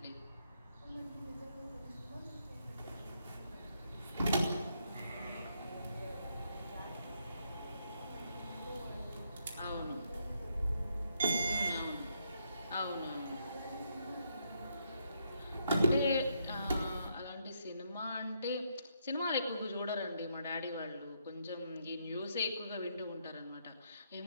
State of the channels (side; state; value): both; inverted; correlation -0.76